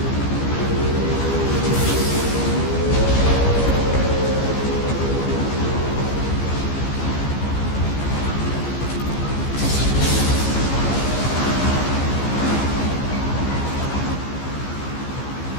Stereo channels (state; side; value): late; right; 15 ms